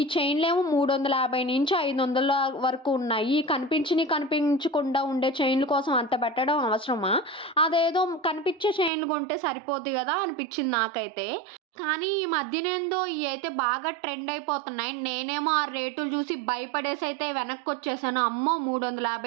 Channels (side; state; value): left; drops out; at 8.9 s